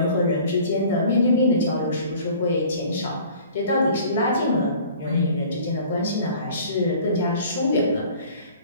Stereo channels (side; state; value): both; inverted; correlation -0.49